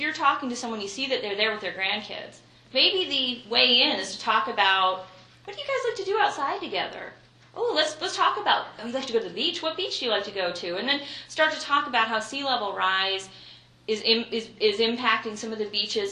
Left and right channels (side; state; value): both; identical; correlation 1.00